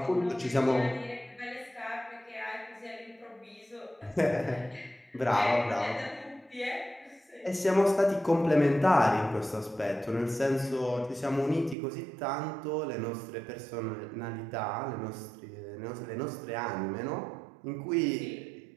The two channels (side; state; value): left; drops out; at 11.8 s